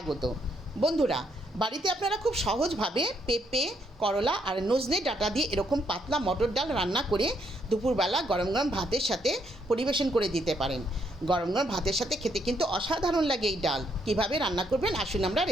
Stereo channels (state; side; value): normal; both; correlation 0.73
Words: বন্ধুরা, বাড়িতে আপনারা খুব সহজভাবে পেঁপে, করলা আর নজনে ডাঁটা দিয়ে এরকম পাতলা মটর ডাল রান্না করে দুপুরবেলা গরম গরম ভাতের সাথে পরিবেশন করে দিতে পারেন। গরম গরম ভাতের সাথে খেতে কিন্তু অসাধারণ লাগে এই ডাল। কিভাবে রান্না করবেন আসুন আমরা